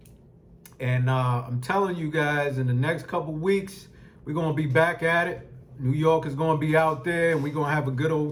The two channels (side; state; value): both; identical; correlation 1.00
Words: And I'm telling you guys, in the next couple weeks, we're going to be back at it. New York is going to be out there, and we're going to have a good